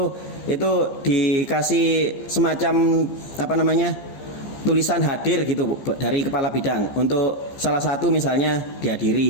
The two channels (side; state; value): right; late; 15 ms